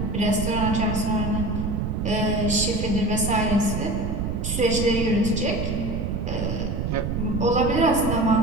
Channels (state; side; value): noise; right; rumble, 2 dB below the sound